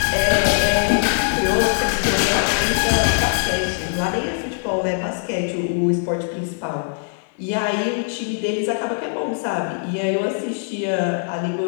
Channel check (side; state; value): right; silent; digital silence